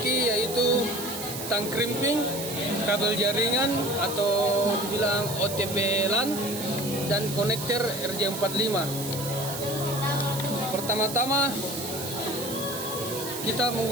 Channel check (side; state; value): right; noise; hiss, 8 dB below the sound